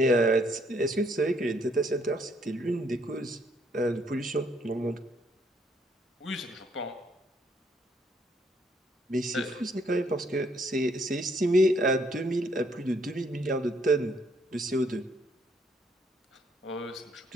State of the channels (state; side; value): normal; both; correlation 0.69